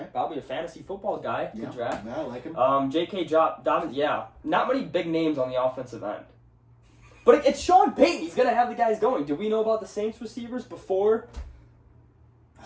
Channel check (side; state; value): both; identical; correlation 1.00